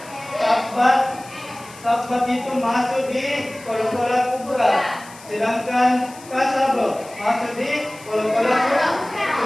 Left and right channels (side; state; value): left; noise; hiss, 20 dB below the sound